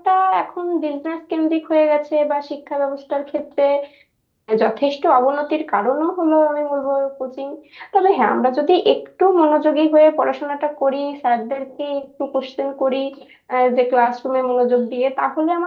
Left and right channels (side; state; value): both; identical; correlation 1.00